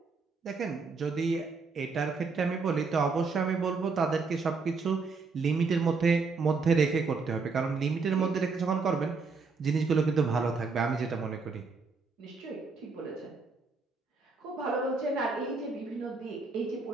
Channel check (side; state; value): left; quieter; 4.5 dB